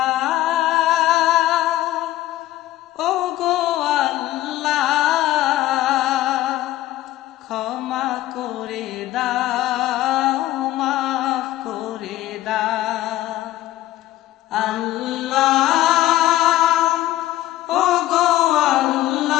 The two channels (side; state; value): right; quieter; 15.1 dB